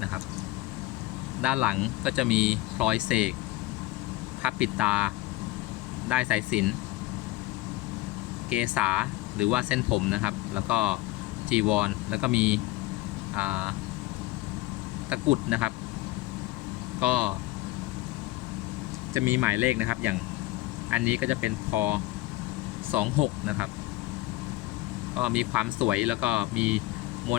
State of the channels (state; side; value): quieter; right; 18.2 dB